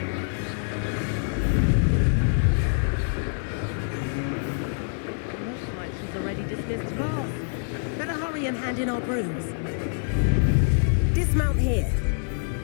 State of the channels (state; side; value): silent; right; 61 dB below the other